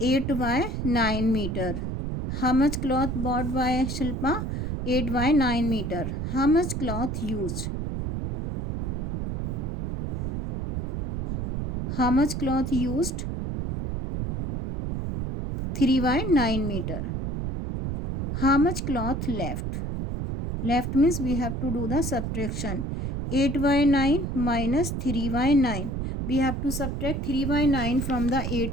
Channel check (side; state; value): right; noise; rumble, 2 dB below the sound